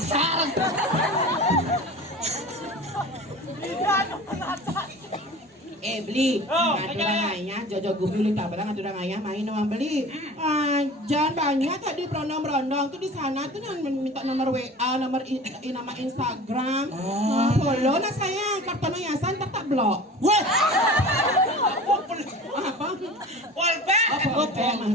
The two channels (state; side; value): normal; both; correlation 0.38